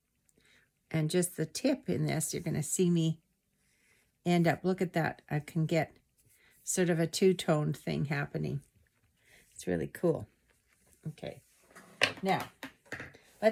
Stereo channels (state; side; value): identical; both; correlation 1.00